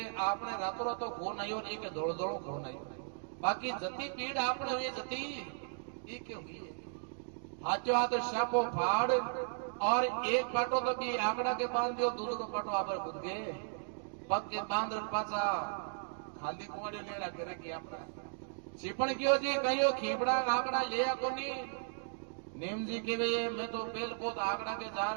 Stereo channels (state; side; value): silent; left; digital silence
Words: आपने रातों रात तो खून आयो नहीं के धोल धोल खून आयो बाकी जती पीड़ आपने हुई जती ये के हुई हाथों हाथ शापो फाड़ और एक पाटो तो भी आंकड़ा के बांध दियो दूसरो पाटो आप खुद गए पग के बांध पासा खाली कोड़ियो ले रहा करेगी अपना छिपण क्यों जी कहियो खीपड़ा आंकड़ा लिया कोनी नेम जी के वे मैं तो बेल पोत आंकड़ा के